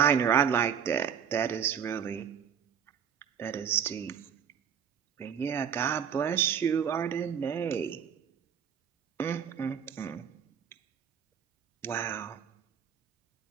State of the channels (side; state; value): left; quieter; 8.0 dB